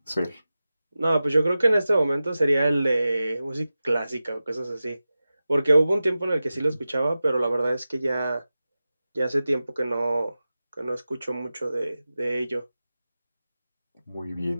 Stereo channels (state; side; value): inverted; both; correlation -0.94